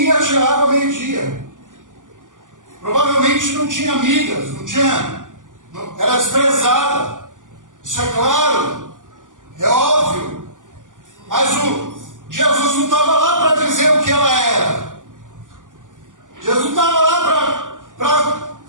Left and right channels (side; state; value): left; late; 0.87 ms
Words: ia tirar água meio-dia. Provavelmente não tinha amigas, era desprezada. Isso é claro, é óbvio. Mas Jesus não estava lá para dizer o que ela era. Jesus não estava lá para